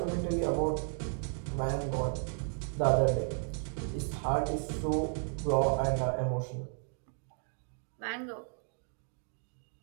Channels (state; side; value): silent; left; 55 dB below the other